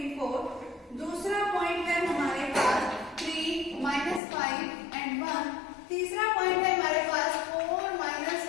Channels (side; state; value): right; drops out; at 4.2 s